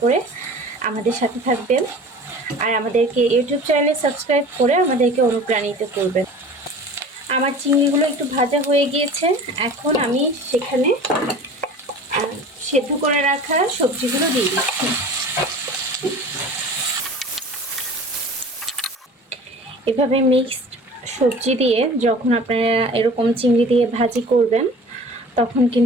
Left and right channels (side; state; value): both; normal; correlation 0.41